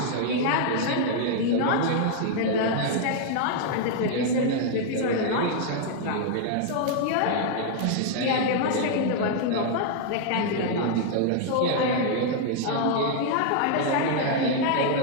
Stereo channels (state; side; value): different; both; correlation 0.00